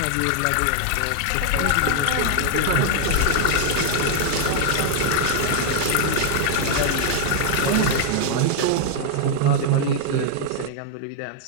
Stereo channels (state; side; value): different; both; correlation 0.00